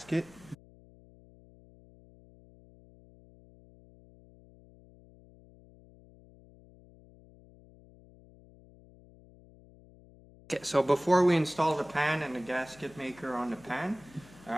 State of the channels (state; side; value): noise; left; hum, 24 dB below the sound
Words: Okay, so before we install the pan and the gasket maker on the pan,